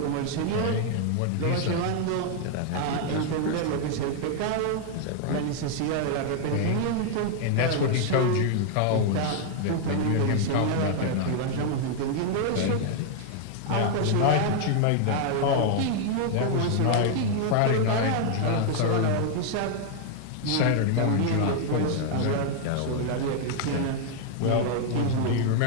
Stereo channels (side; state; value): both; different; correlation 0.00